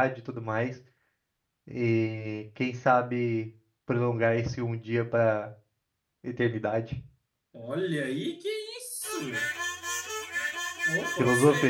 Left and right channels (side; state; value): both; identical; correlation 1.00